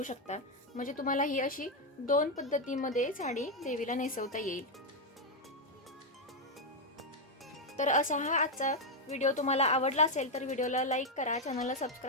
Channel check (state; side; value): normal; both; correlation 0.02